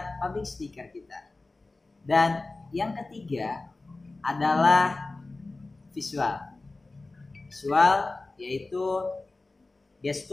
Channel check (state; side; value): quieter; right; 3.3 dB